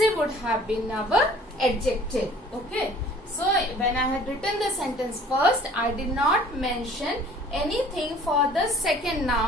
would have been our adjective. Okay. So when I had written the sentence first, I did not mention anything for the second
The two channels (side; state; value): both; normal; correlation 0.51